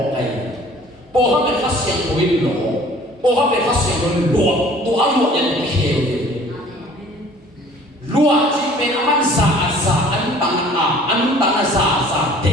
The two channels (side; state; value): both; normal; correlation 0.51